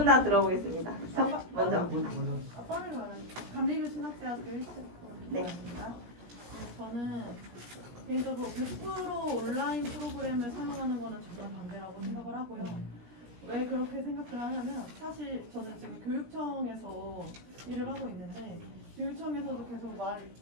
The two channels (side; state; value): left; late; 17 ms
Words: 다 들어보겠습니다. 먼저. 감리교 신학대학교 1학번입니다. 네. 저는 개인적으로 100% 온라인 프로그램을 사용하는 거는 정말 반대라고 생각을 하고요. 왜 그렇게 생각을 하냐면 사실 저는 지금 교육청에서 일을 하고 있는데 교육청에서도 계속